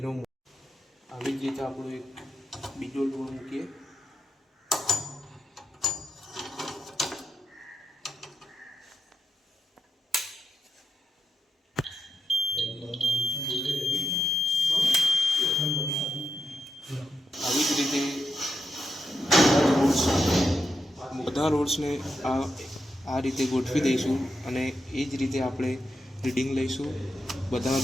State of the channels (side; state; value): both; normal; correlation 0.85